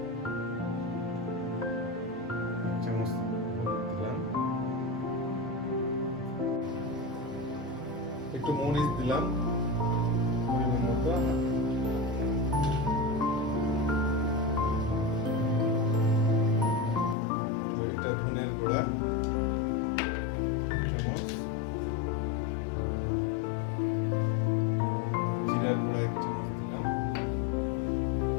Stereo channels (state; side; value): drops out; right; at 17.2 s